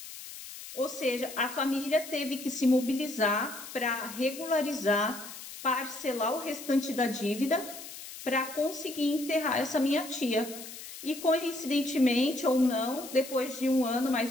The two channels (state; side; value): noise; left; hiss, 12 dB below the sound